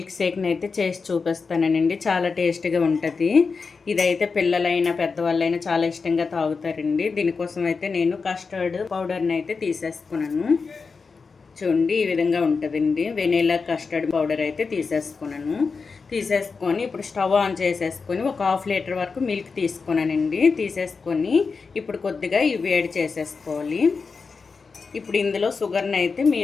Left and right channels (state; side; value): quieter; right; 4.8 dB